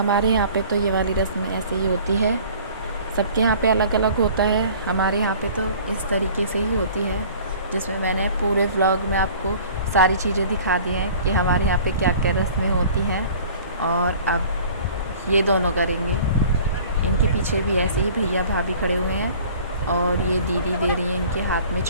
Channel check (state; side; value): inverted; both; correlation -0.48